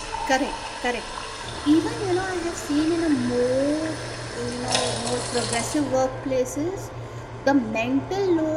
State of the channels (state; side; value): identical; both; correlation 1.00